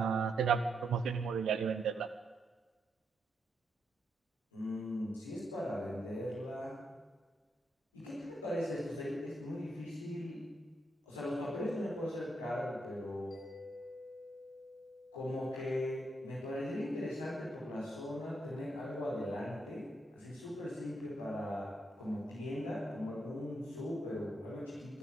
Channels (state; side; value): normal; both; correlation 0.80